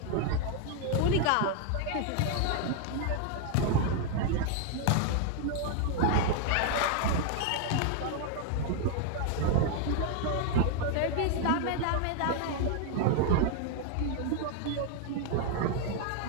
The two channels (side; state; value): both; different; correlation 0.00